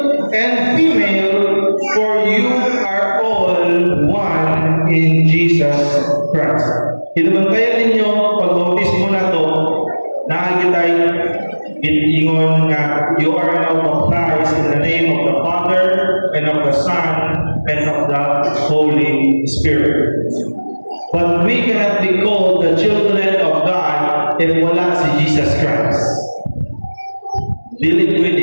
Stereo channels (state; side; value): inverted; both; correlation -1.00